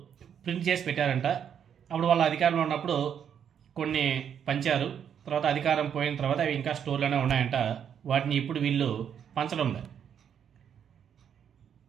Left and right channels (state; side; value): quieter; left; 8.4 dB